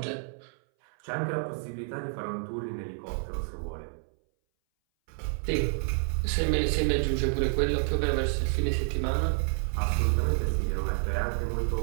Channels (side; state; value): left; silent; 58 dB below the other